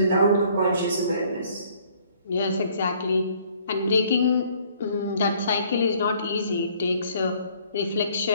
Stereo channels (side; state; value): both; inverted; correlation -0.60